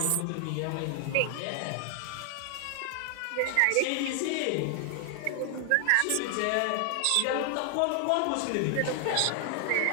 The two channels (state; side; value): different; both; correlation 0.00